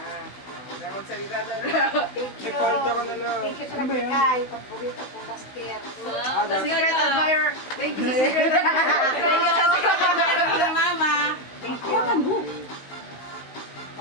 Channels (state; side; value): late; right; 16 ms